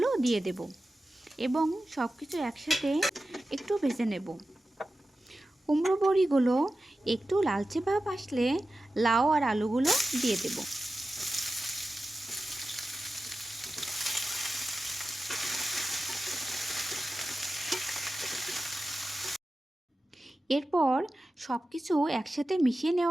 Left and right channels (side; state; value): both; normal; correlation 0.93